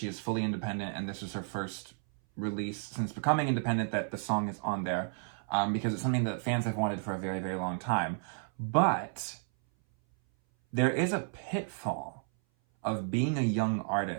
is fully independent and this is her first release since becoming independent, that the song is on there, because it's something that fans have wanted for a very, very long time. But there is a pitfall of being a young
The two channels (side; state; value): left; silent; 56 dB below the other